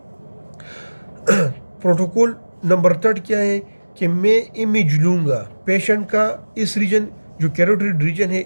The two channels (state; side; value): inverted; both; correlation -1.00